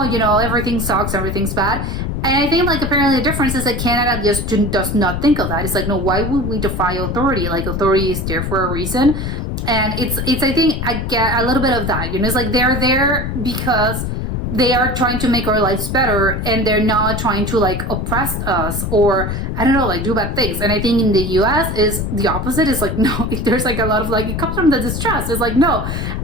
you know, everything sucks, everything's bad. And I think, like, apparently the difference is that Canada just does not think of that. It's like, no, why would we defy authority? Like, authority is there for a reason. And it's I think I get a little bit of that, you know, it's like they're there because they are trying to make our lives better and they're not trying to, like, oppress us or, I don't know, like, do bad things. And I think in the US is the opposite. It's like, no, there's, like, a lot of, like, it comes from the distrust. It's like, no,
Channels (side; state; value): left; noise; rumble, 3 dB below the sound